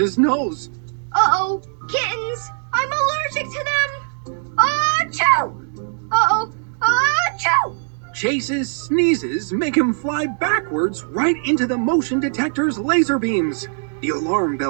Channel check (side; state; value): left; silent; 65 dB below the other